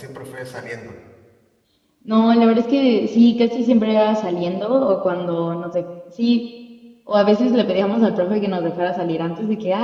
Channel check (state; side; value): identical; both; correlation 1.00